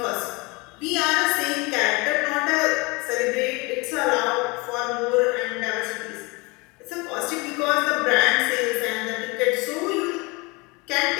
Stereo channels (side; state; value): right; quieter; 26.5 dB